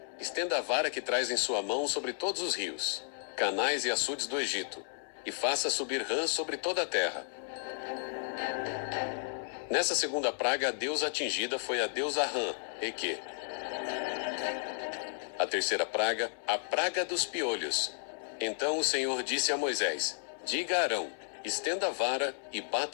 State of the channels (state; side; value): silent; right; 56 dB below the other